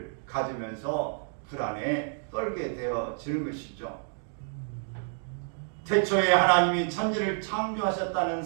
가지면서 불안에 떨게 되어지는 것이죠. 태초에 하나님이 천지를 창조하셨다는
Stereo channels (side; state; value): left; silent; 58 dB below the other